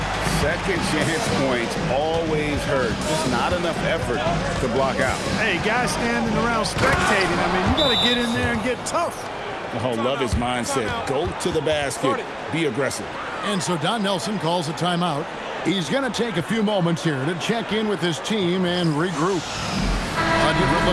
Second chance points always hurt. Just not enough effort to block out. Hey, guys standing around spectating, I mean, you got to get in there and get tough. Oh, love his mindset. Go to the basket. Be aggressive. And so Don Nelson calls a timeout. He's going to take a few moments here to check in with his team and regroup. A different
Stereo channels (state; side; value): identical; both; correlation 1.00